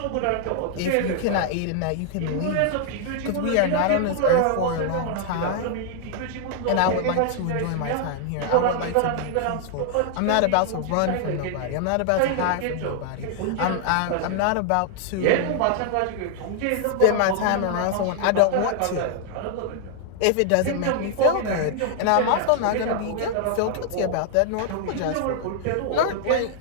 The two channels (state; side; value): different; both; correlation -0.01